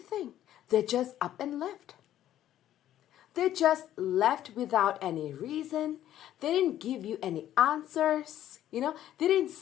They just up and left. They just left without any reason. They didn't give you any answers. You know, they didn't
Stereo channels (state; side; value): quieter; right; 12.2 dB